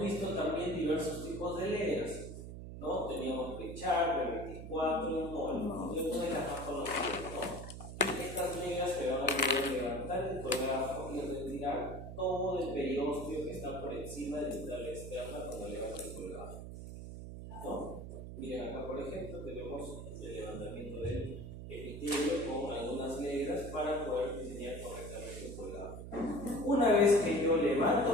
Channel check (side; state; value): right; noise; hum, 10 dB below the sound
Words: también diversos tipos de leras, ¿no? Teníamos Pritchard, B24 y Moll, y una de las más conocidas, ¿no? Estas negras se van a poder levantar el colgajo y retirar todo el periósteo que está por encima de la entrada externa cuando levanta el colgajo, ¿no? Miren acá, por ejemplo, tenemos el levantamiento del epitelio con algunas negras para poder diseñar correctamente el colgajo. Una vez que yo